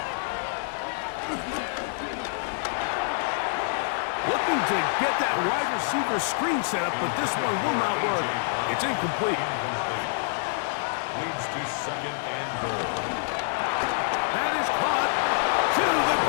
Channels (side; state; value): right; silent; 60 dB below the other